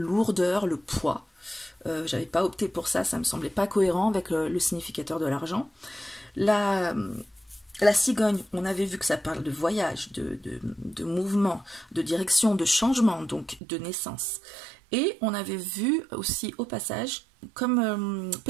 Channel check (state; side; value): drops out; left; at 13.6 s